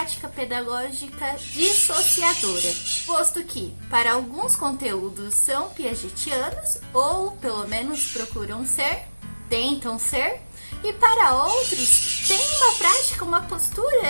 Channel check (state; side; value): inverted; both; correlation -1.00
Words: pedagógica dissociadora, posto que, para alguns conteúdos são piagetianos, ou pelo menos procuram ser, tentam ser, e para outros tem uma prática, uma